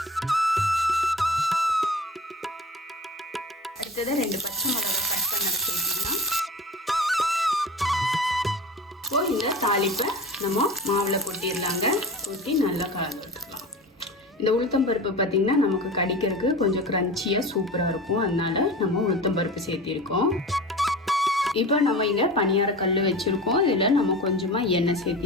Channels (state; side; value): normal; both; correlation 0.35